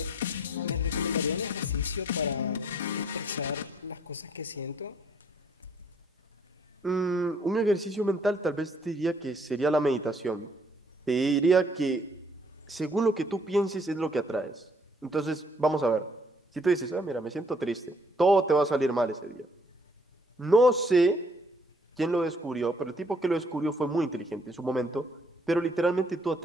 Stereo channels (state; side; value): normal; both; correlation 0.64